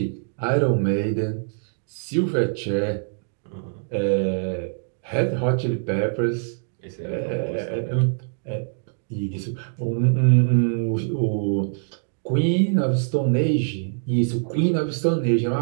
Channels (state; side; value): silent; left; digital silence